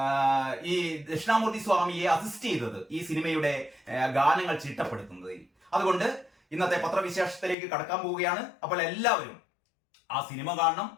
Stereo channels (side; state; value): right; drops out; at 7.6 s